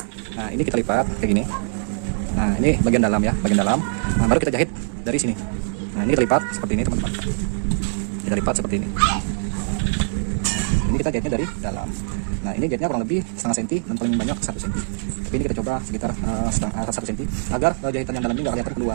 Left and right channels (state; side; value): silent; left; digital silence